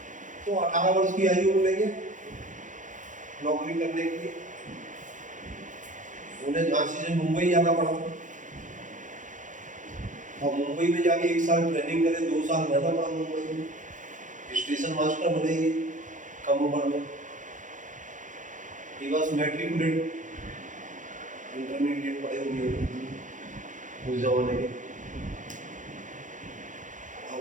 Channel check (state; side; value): late; left; 0.37 ms